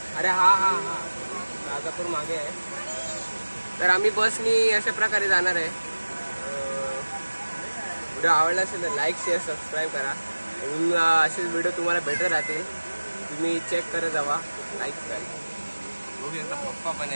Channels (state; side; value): inverted; both; correlation -1.00